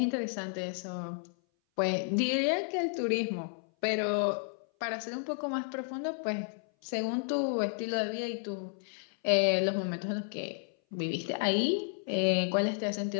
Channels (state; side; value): silent; right; 56 dB below the other